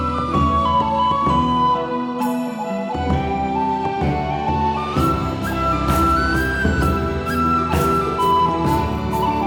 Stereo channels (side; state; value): both; identical; correlation 1.00